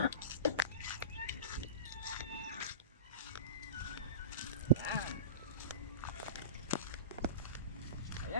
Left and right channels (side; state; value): both; inverted; correlation -0.30